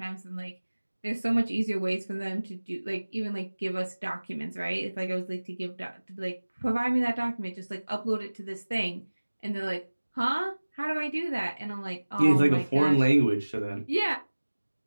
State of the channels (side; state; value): both; inverted; correlation -1.00